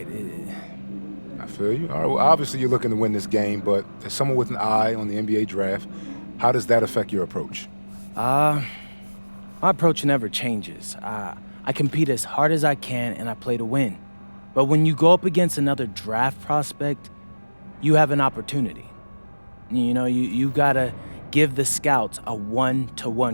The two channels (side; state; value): both; inverted; correlation -1.00